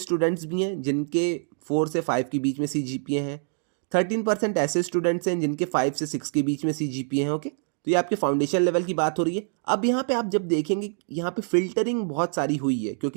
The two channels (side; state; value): left; silent; 61 dB below the other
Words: भी हैं जिनके 4 से 5 के बीच में CGPA हैं। 13% ऐसे स्टूडेंट्स हैं जिनके 5 से 6 के बीच में CGPA हैं। ओके, तो ये आपके फाउंडेशन लेवल की बात हो रही है। अब यहाँ पे आप जब देखेंगे, यहाँ पे फिल्टरिंग बहुत सारी हुई है